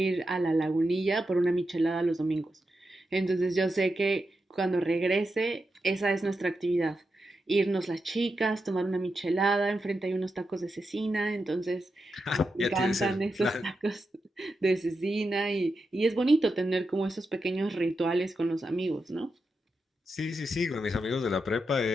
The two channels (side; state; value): both; normal; correlation 0.87